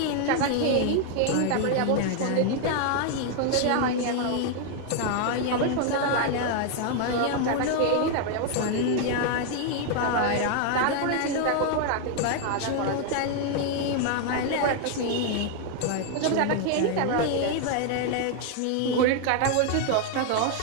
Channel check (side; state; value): both; different; correlation 0.00